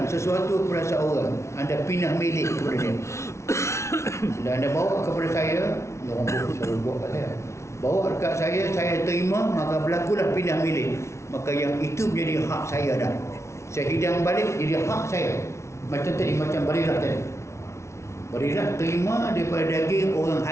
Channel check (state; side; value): late; right; 0.13 ms